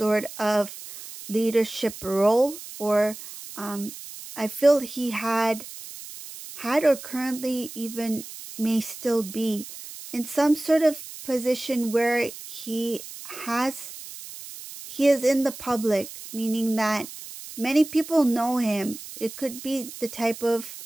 of leadership role, or I feel he had or currently even may still be in some sort of position where he is in the public, meaning that many people know him. It could be the type of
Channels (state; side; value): noise; right; hiss, 13 dB below the sound